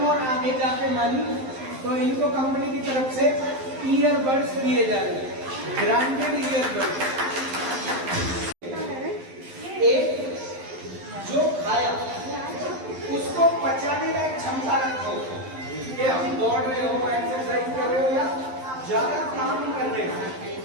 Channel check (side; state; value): left; late; 11 ms